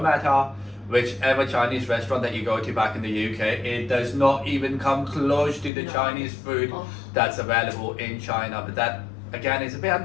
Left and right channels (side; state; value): right; drops out; at 5.7 s